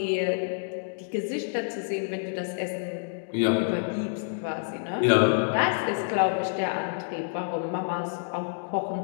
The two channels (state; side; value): silent; right; digital silence